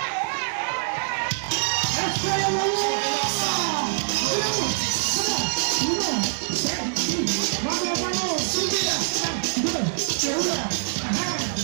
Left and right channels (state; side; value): silent; left; 62 dB below the other